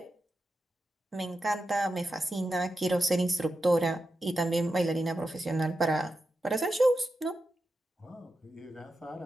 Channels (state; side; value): normal; both; correlation 0.89